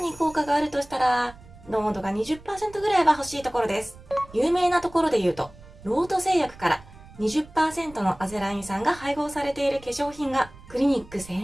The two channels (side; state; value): right; noise; rumble, 21 dB below the sound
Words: 効果があるとしたら濃度が 20% ぐらいは欲しいところです。有名なところで言うと、ロート製薬から20% のアゼライン酸が配合されている化粧品がクリニック